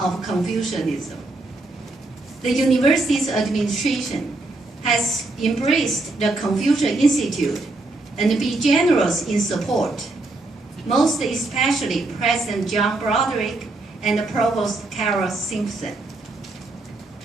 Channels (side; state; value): left; quieter; 3.0 dB